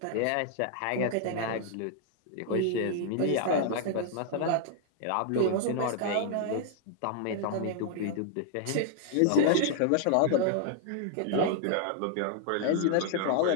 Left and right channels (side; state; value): both; different; correlation 0.00